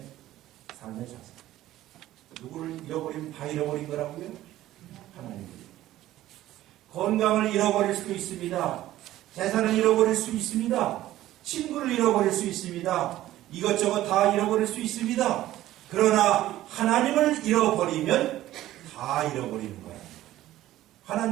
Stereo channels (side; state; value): left; quieter; 14.6 dB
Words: 삶의 자세. 누구를 잃어버리면 다 잃어버린 거라고요? 하나님을. 건강을 잃어버릴 수도 있습니다. 재산을 잃어버릴 수 있습니다. 친구를 잃어버릴 수 있습니다. 이것저것 다 잃어버릴 수 있습니다. 그러나 하나님을 잃어버리면 다 잃어버리는 거예요.